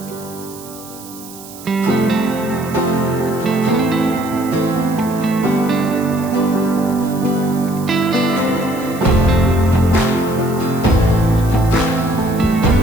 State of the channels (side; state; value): right; noise; hiss, 17 dB below the sound